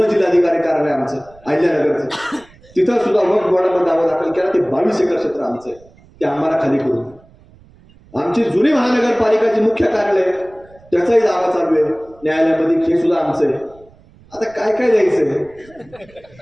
जिल्हाधिकारी कार्यालय आमचं अहिल्यानगरचं, तिथं सुद्धा वक्फ बोर्डामध्ये दावा दाखल केला ते 22 एकर क्षेत्र आमचं आहे, ते आम्हाला खाली करून. आमची जुनी महानगरपालिकाची मुख्य कार्यालय त्याचाही दावा चालू आहे न्यायालयामध्ये, हे सुद्धा आमचं आहे. आता काय काय द्यायचंय?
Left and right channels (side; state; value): right; noise; rumble, 27 dB below the sound